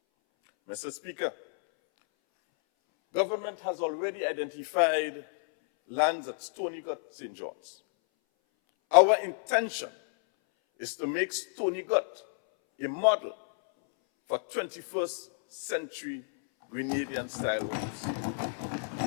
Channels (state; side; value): silent; right; 58 dB below the other